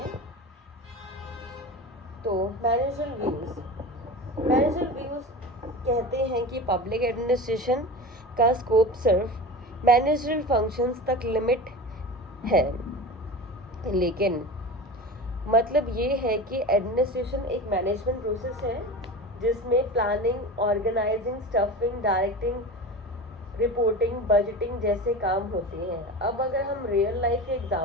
तो मैनेजरल व्यूज़ कहते हैं कि पब्लिक एडमिनिस्ट्रेशन का स्कोप सिर्फ मैनेजरल फंक्शंस तक लिमिट है, लेकिन मतलब ये है कि एडमिनिस्ट्रेशन एक मैनेजमेंट प्रोसेस है जिसमें planning, organising, staffing, directing, reporting, budgeting जैसे काम होते हैं। अब अगर हम रियल लाइफ के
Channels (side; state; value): both; normal; correlation 0.29